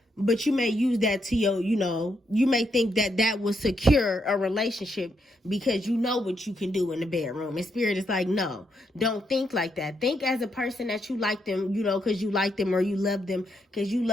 But you may use that to your, you know, you may think that will secure a relationship because you know what you can do in the bedroom. And Spirit is like, no, don't think like that. Think as a person that you like them, you know, because you like them, or you love them because you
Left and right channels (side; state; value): both; normal; correlation 0.79